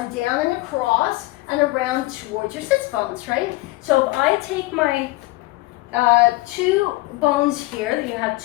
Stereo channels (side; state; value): right; quieter; 20.4 dB